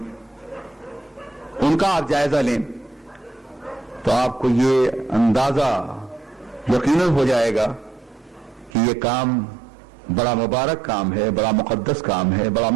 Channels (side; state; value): left; drops out; at 8.7 s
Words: ان کا آپ جائزہ لیں تو آپ کو یہ اندازہ یقیناً ہو جائے گا کہ یہ کام بڑا مبارک کام ہے، بڑا مقدس کام ہے، بڑا